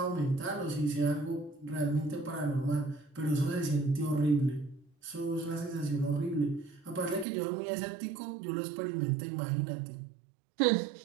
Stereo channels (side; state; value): left; drops out; at 7.2 s